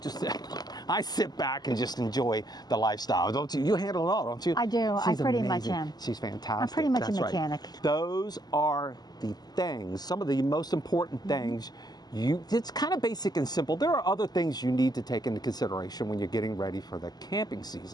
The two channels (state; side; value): late; right; 0.20 ms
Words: I sit back and just enjoy the lifestyle, don't you? You handle it all, don't you? I do. She's I pretty amazing. much am. She's fantastic. I'm pretty much That's a mechanic. Right. Those are the things, some of the most important things. It's kind of basic and simple. There are other things you need to take into consideration when you're getting ready for the camping